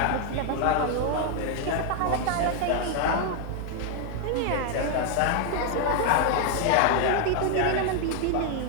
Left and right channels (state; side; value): different; both; correlation 0.00